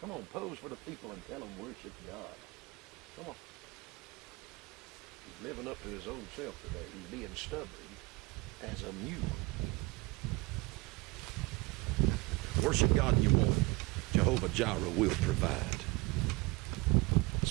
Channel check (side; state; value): left; quieter; 23.6 dB